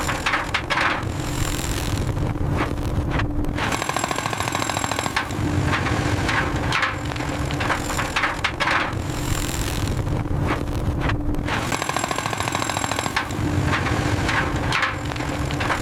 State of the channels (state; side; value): identical; both; correlation 1.00